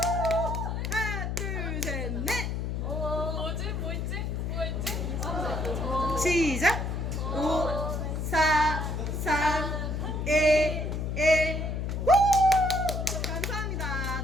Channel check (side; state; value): left; noise; hum, 2 dB below the sound